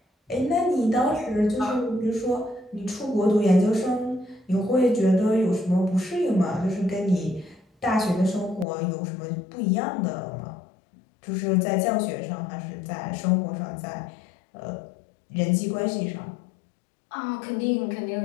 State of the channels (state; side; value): drops out; right; at 8.7 s